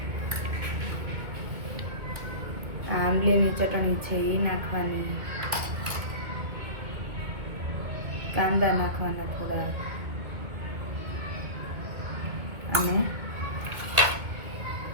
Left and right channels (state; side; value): late; left; 2.2 ms